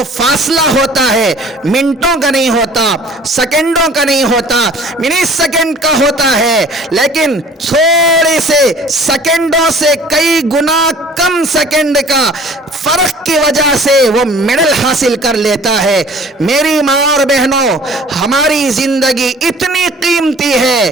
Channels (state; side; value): normal; both; correlation 0.49